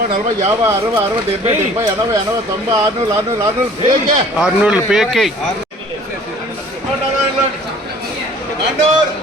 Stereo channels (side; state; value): both; normal; correlation 0.51